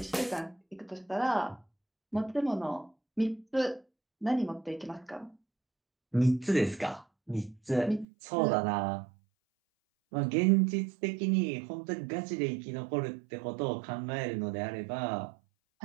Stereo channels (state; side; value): drops out; left; at 8.1 s